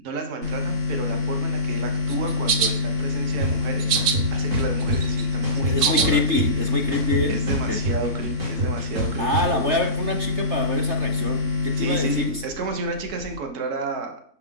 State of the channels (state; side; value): late; left; 4.4 ms